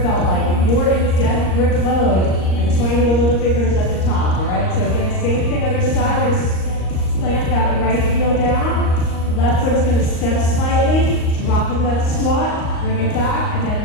felt like. If you're in death grip mode, I just want you to wiggle the fingers at the top, all right? So again, same thing other side. We're just plant that right heel down. Left foot is going to step slightly, drop into that squat, bring it back, and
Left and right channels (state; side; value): late; right; 38 ms